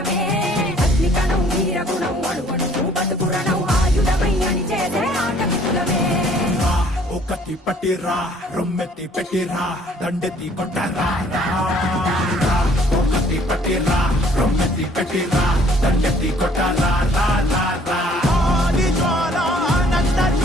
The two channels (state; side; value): normal; both; correlation 0.59